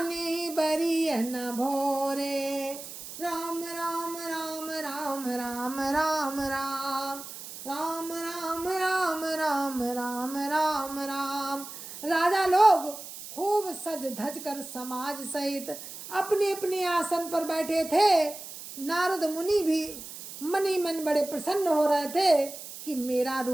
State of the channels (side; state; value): right; noise; hiss, 12 dB below the sound